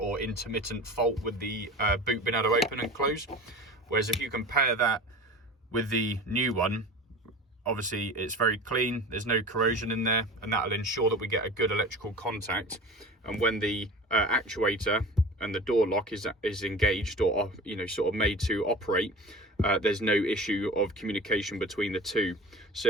intermittent fault with the boot being able to open and close. Whereas if you compare that with the new one, obviously it's very clean, there's no corrosion in there, and that will ensure that we get a good electrical contact. And when the actuator and the door lock is engaged, or sort of made to operate, there's no issue of communication between the two. So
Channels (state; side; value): normal; both; correlation 0.36